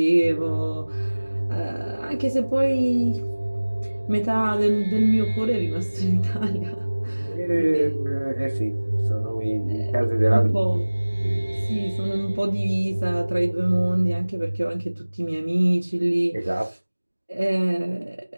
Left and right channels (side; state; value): both; inverted; correlation -1.00